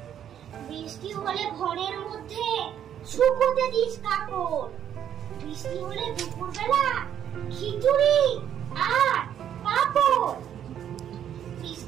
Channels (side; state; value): left; quieter; 9.8 dB